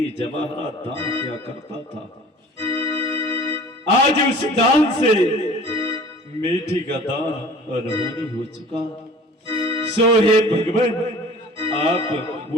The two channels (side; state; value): both; normal; correlation 0.46